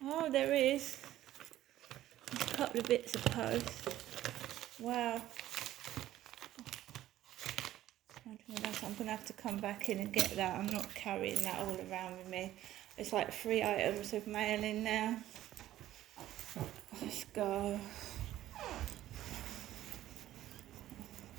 Oh, there is. There's a couple of bits of post. Wow. I'm going to have to come back in and get that. I'm not carrying that all around with me. It's like 3 items of mail in now. Let's go.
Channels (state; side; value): quieter; left; 13.6 dB